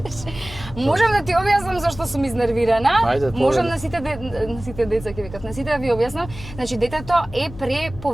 Можам да ти објаснам зашто сум изнервирана. Ајде, Можам на сите деца ќе викат, на сите да ви објаснам. Значи детето е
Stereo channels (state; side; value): noise; left; hum, 14 dB below the sound